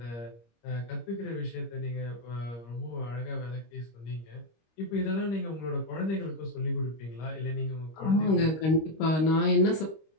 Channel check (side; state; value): right; late; 25 ms